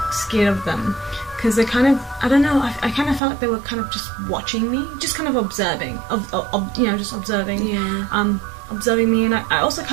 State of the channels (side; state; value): left; drops out; at 3.2 s